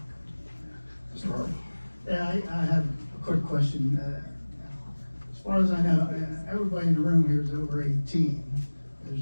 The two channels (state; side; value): inverted; both; correlation -1.00